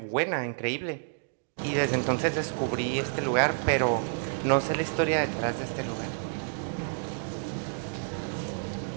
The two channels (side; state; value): left; silent; digital silence